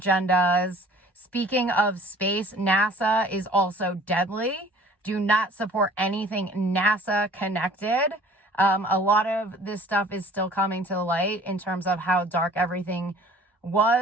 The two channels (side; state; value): both; normal; correlation 0.50